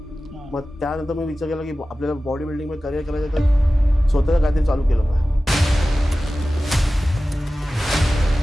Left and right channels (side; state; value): both; normal; correlation 0.95